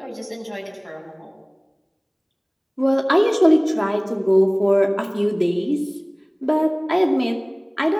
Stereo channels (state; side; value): identical; both; correlation 1.00